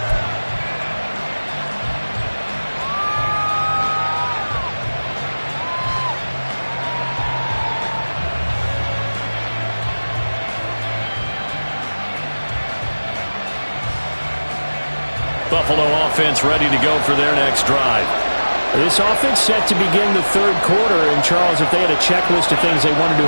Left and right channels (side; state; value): both; inverted; correlation -1.00